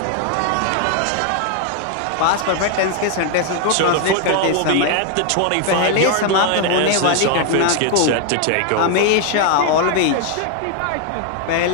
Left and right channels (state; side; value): different; both; correlation 0.00